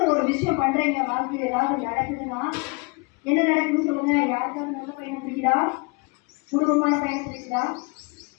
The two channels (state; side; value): quieter; right; 29.5 dB